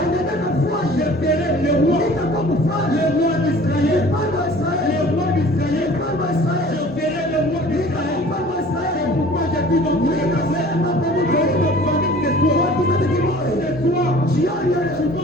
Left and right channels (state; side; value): normal; both; correlation 0.47